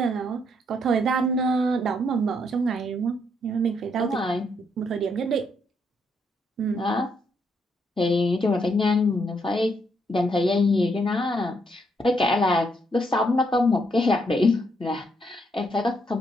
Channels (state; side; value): normal; both; correlation 0.75